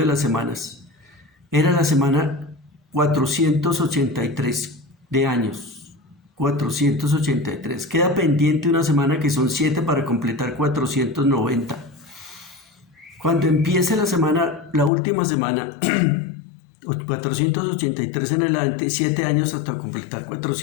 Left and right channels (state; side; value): drops out; right; at 14.9 s